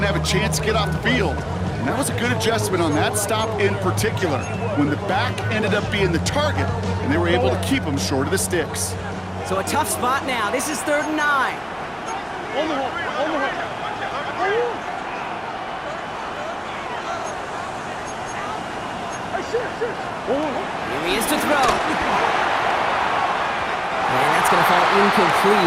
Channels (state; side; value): identical; both; correlation 1.00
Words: have a chance to get off the field. And that was a good adjustment on that stop in particular, when the back ended up being the target, and they were able to keep him short of the sticks. So a tough spot now. This is 3rd and 9. Here he is to throw. And that's going to fall